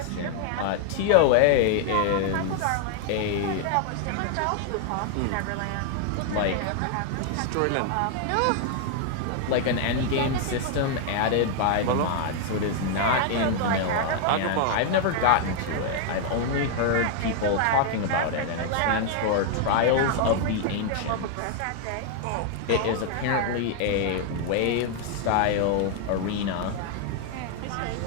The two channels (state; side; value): different; both; correlation 0.00